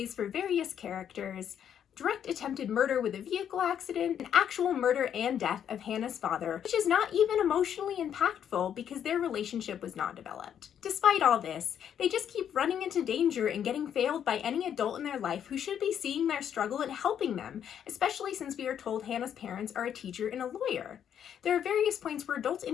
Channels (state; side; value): quieter; right; 9.1 dB